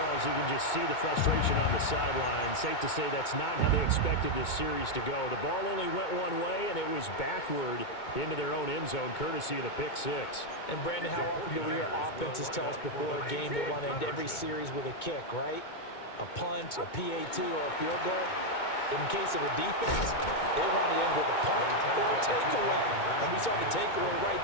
you can just see the frustration on the sideline. Safe to say that's not how they expected this series to go. The ball only went one way, and it was backward into their own end zone, courtesy of the pick 6. And, Brandon, how often do we hear offenses tell us before a game they want to end every series with a kick, right? A punt, a PAT, or a field goal. In case of a defense, they want to end with a punt or a takeaway. And we saw the takeaway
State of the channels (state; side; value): late; right; 2.2 ms